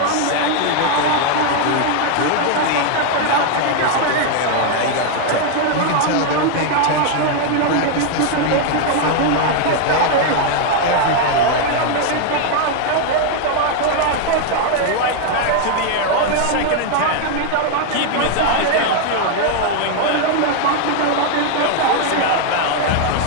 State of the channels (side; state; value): both; different; correlation 0.00